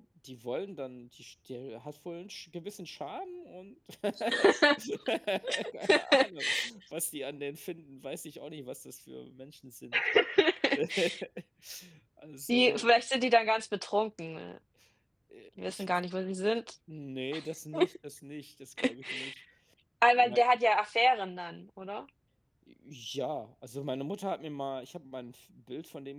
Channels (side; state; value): both; identical; correlation 1.00